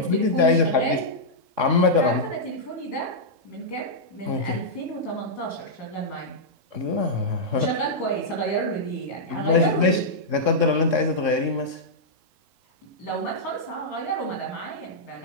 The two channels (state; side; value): late; left; 3.6 ms